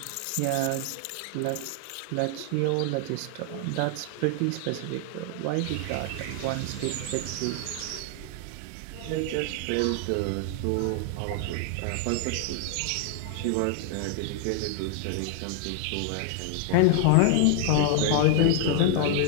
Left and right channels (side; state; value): both; different; correlation 0.00